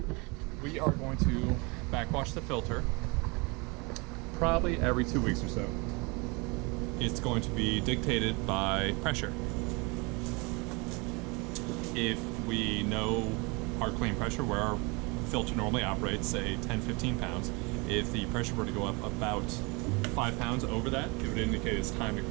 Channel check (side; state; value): left; quieter; 28.4 dB